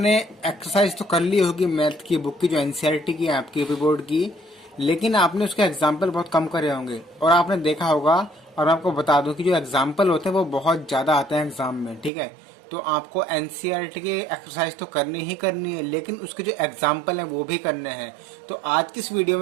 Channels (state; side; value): drops out; left; at 12.1 s